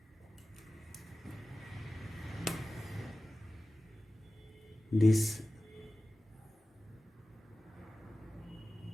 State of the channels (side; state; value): both; normal; correlation 0.95